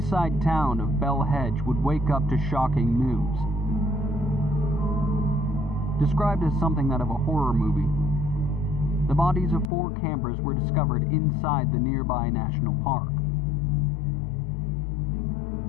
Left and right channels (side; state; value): right; drops out; at 9.7 s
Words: town of Bell Hedge would wake up to shocking news. Described as something out of a horror movie, the bodies of 4 campers were discovered inside the nearby national park.